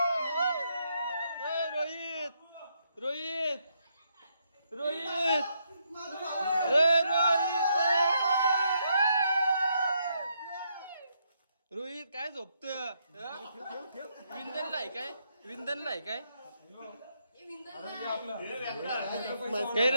रोहित रोहित रोहित रोहित काय झोपत. विंधनला आहे काय. विंधनला आहे काय. काय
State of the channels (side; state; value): both; inverted; correlation -0.76